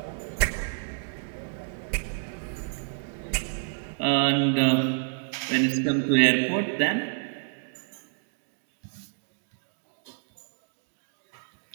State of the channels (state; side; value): silent; left; digital silence